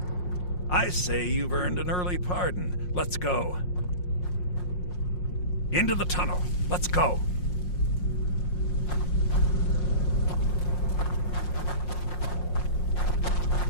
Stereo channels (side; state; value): right; late; 5.6 ms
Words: I say you've earned an early pardon. Let's go. Into the tunnel. Let's go.